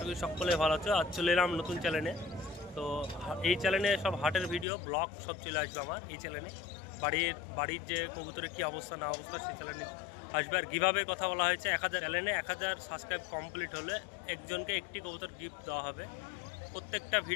করি সকলে ভালো আছো। আজ চলে এলাম নতুন চ্যানেলে। তো এই চ্যানেলে সব হাটের ভিডিও ব্লগ সব চলে আসবে আমার এই চ্যানেলে। বাড়ির যে কবুতরের কী অবস্থা না অবস্থা সেই চ্যানেলে আসবে। আর কীভাবে কথা বলা হয়েছে, 1000 চ্যানেলে 1000 সাবস্ক্রাইব কমপ্লিট হলে একজনকে একটি কবুতর গিফট দেওয়া হবে। প্রত্যেকটা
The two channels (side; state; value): right; drops out; at 4.7 s